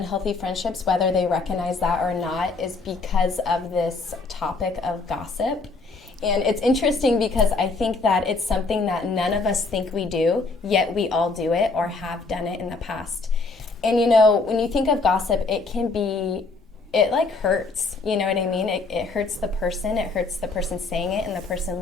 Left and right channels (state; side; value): quieter; right; 3.9 dB